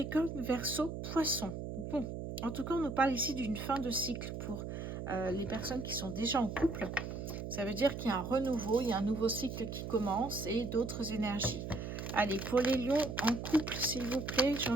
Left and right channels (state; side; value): noise; right; hum, 6 dB below the sound